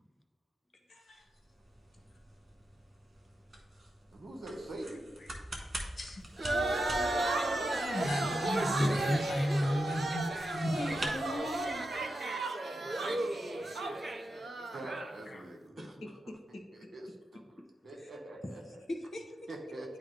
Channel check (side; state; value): both; normal; correlation 0.88